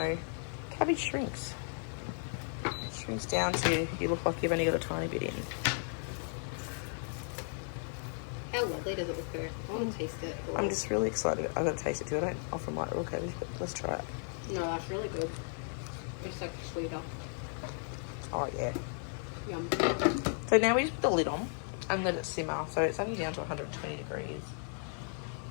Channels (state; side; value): silent; right; 54 dB below the other